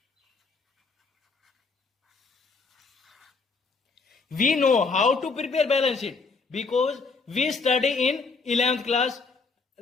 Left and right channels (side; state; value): right; quieter; 4.4 dB